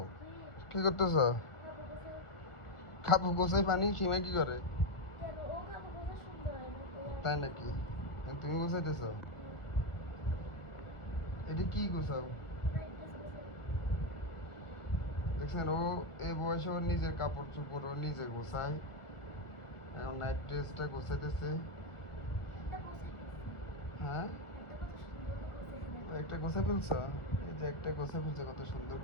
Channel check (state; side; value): late; right; 1.4 ms